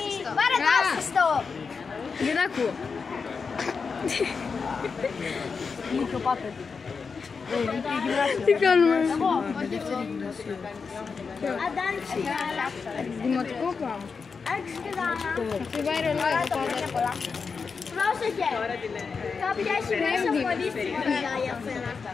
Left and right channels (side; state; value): right; quieter; 5.2 dB